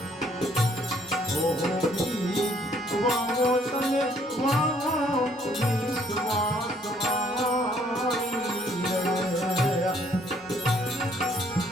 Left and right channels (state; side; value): normal; both; correlation 0.64